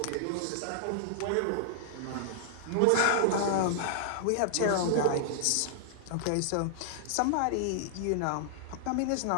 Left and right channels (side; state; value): both; different; correlation -0.01